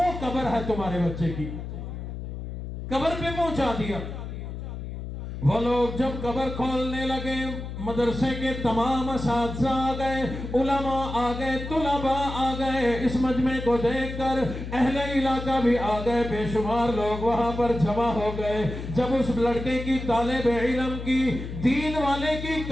قبر ہے تمہارے بچے کی، قبر پہ پہنچا دیا۔ وہ لوگ جب قبر کھولنے لگے، مدرسے کے تمام اساتذہ آ گئے، علماء آ گئے، طلباء آ گئے، اس مجمع کو دیکھ کر اہل علاقہ بھی آ گئے، بے شمار لوگ وہاں پر جمع ہو گئے۔ جب اس لڑکے کی طالب علم کی، دین والے کی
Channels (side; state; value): left; noise; hum, 8 dB below the sound